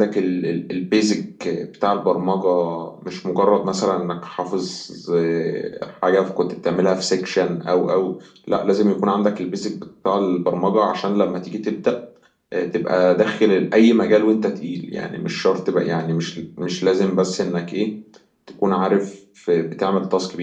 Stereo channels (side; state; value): both; identical; correlation 1.00